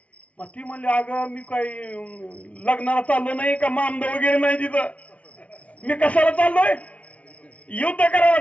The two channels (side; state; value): right; late; 0.064 ms